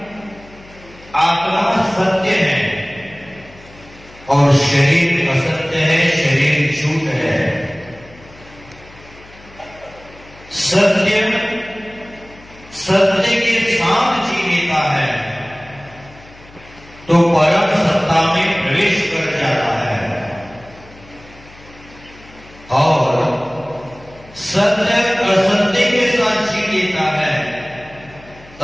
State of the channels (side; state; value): left; noise; hum, 23 dB below the sound